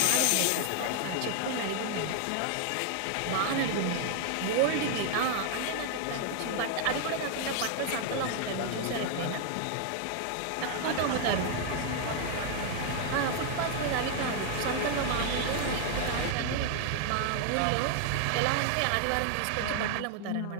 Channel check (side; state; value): both; different; correlation 0.00